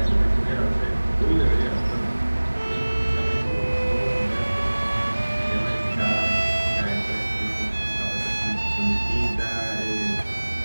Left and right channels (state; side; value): inverted; both; correlation -1.00